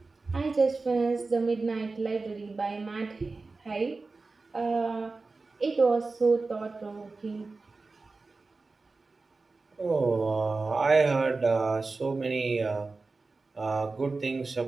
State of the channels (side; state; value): left; quieter; 3.8 dB